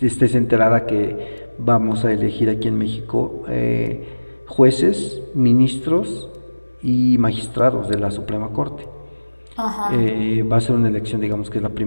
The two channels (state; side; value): inverted; both; correlation -1.00